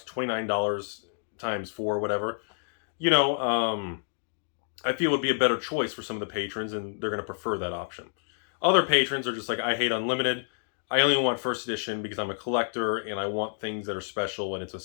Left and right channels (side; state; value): right; silent; digital silence